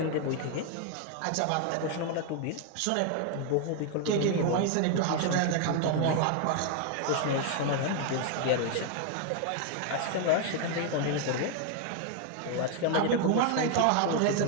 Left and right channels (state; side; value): different; both; correlation 0.00